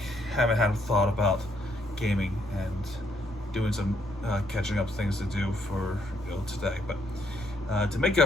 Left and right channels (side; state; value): both; normal; correlation 0.72